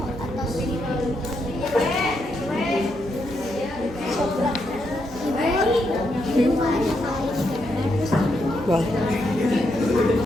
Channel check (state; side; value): normal; both; correlation 0.80